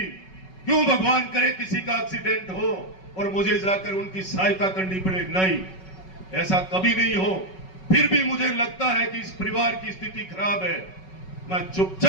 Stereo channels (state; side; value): late; right; 5.3 ms